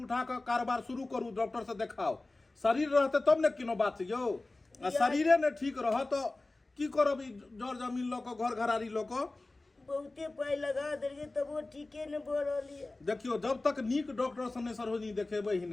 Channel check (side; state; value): right; quieter; 3.1 dB